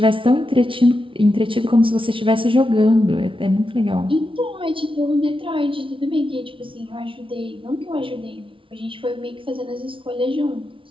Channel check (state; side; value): late; left; 0.25 ms